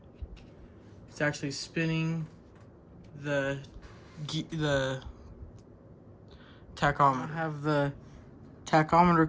it's actually spinning the tachometer. I have the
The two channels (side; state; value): both; identical; correlation 1.00